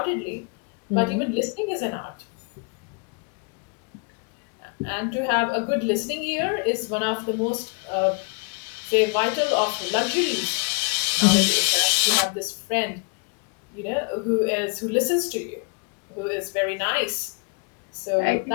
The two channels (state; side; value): quieter; right; 34.4 dB